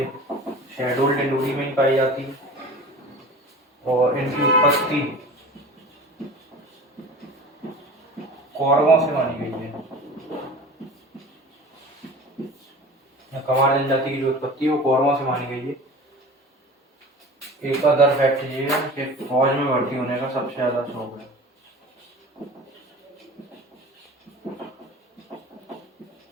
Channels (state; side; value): normal; both; correlation 0.38